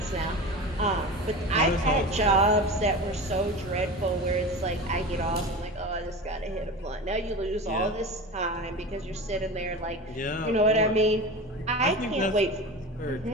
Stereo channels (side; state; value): both; normal; correlation 0.30